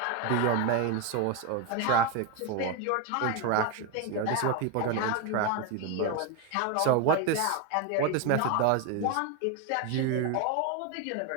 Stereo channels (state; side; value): different; both; correlation 0.02